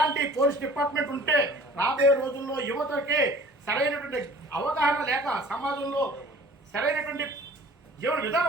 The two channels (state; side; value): normal; both; correlation 0.48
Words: పోలీస్ డిపార్ట్మెంట్ ఉంటే రాబోయే రోజుల్లో యువతకి సరైనటువంటి అవగాహన లేక సమాజంలో సరైనటువంటి జీవన